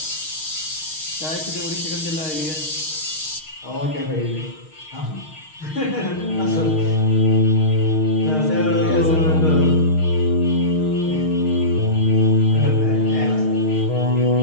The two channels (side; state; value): right; late; 6.4 ms